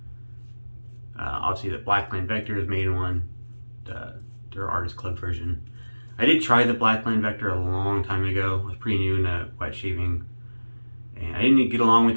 obviously the Blackland Vector has made one, their Artist Club version. I did try the Blackland Vector a long time ago. I was pretty new into wet shaving, and I didn't get along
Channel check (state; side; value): inverted; both; correlation -1.00